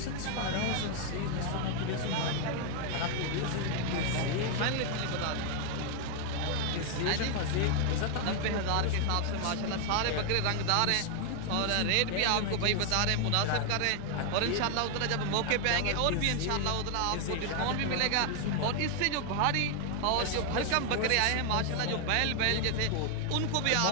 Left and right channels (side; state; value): both; different; correlation 0.00